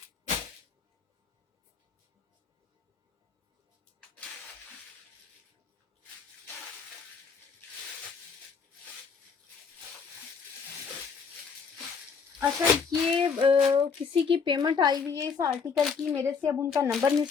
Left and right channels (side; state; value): right; quieter; 5.6 dB